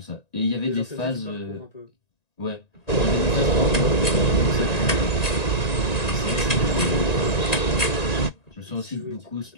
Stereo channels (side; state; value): right; late; 1.9 ms